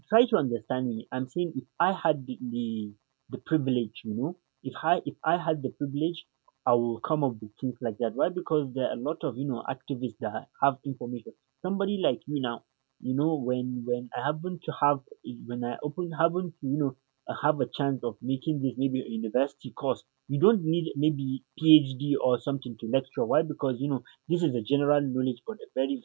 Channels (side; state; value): left; quieter; 34.2 dB